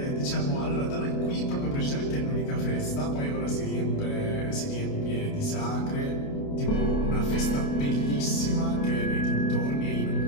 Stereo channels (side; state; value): right; late; 29 ms